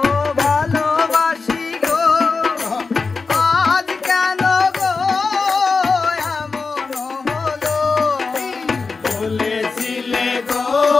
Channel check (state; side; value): quieter; right; 4.4 dB